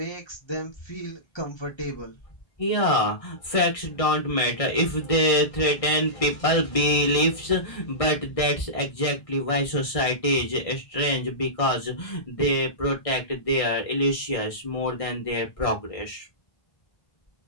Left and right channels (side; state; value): right; late; 1.6 ms